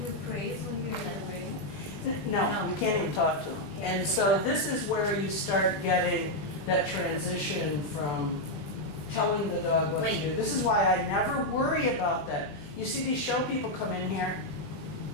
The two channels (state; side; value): late; right; 20 ms